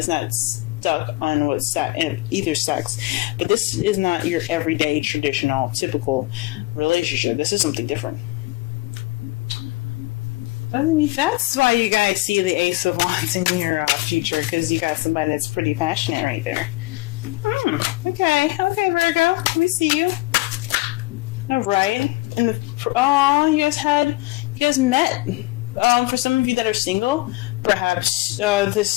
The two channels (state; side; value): quieter; right; 20.8 dB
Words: not stuck on either sex. But this is not your everyday, traditional, typical relationship. This is something different. That's why you guys see the Ace of Wands in your future, because you got somebody that's pretty passionate right there. Okay, Virgo, we see you. All right, and you guys met. For some of you that are single, perhaps